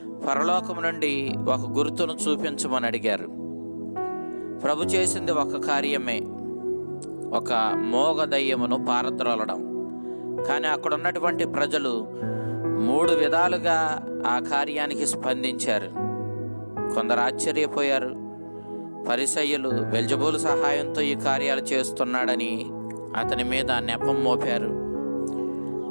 పరలోకము నుండి ఒక గుర్తును చూపించమని అడిగారు. ప్రభు చేసింది ఒక కార్యమే, ఒక మోగ దయ్యమును పారద్రోలడం. కానీ అక్కడ ఉన్నటువంటి ప్రజలు 3 విధాలుగా ఆ కార్యానికి స్పందించారు. కొందరు ఆశ్చర్యపోయారు. పరిసయ్యులు బెల్జబూలు సహాయంతో ఈ కార్యాలు చేస్తున్నాడని అతని మీద నెపం మోపారు.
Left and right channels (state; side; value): inverted; both; correlation -1.00